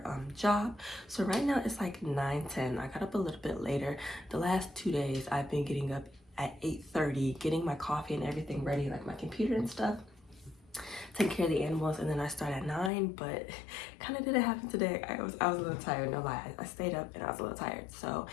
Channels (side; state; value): right; drops out; at 12.9 s